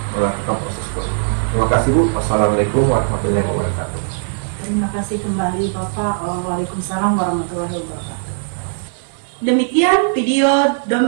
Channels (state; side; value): silent; left; digital silence